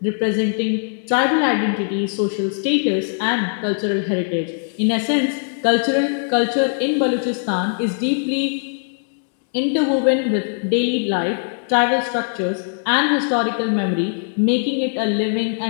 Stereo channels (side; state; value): right; silent; digital silence